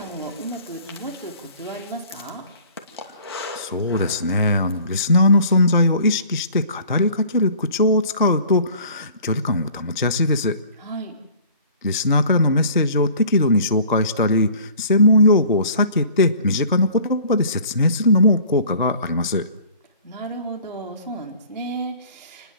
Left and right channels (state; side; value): inverted; both; correlation -0.49